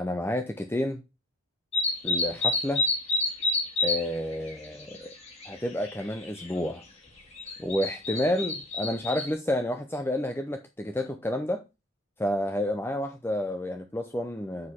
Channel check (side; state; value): both; normal; correlation 0.48